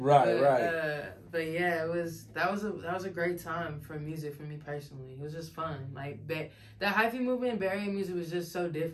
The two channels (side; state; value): both; identical; correlation 1.00